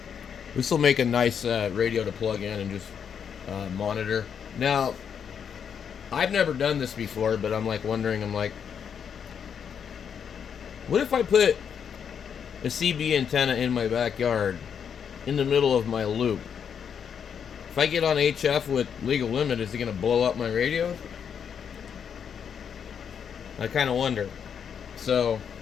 this will make a nice radio to plug in and just monitor. Now, I've never done this before, but I'm like wondering, what if I put a CB antenna in my backyard in the middle of my loop? If I get on HF with legal limit, is it going to blow up my radio? I kind of wonder. So,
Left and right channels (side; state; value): right; quieter; 7.5 dB